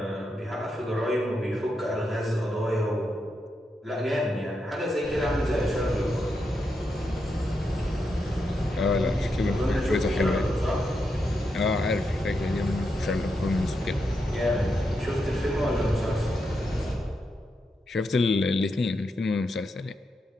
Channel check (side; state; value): both; normal; correlation 0.84